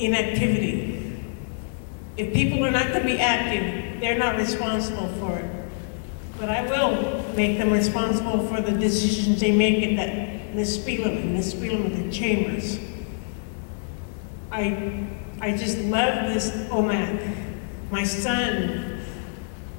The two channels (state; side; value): silent; right; digital silence